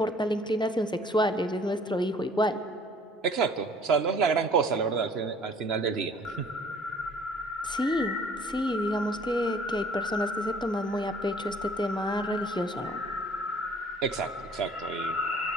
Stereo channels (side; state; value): both; normal; correlation 0.54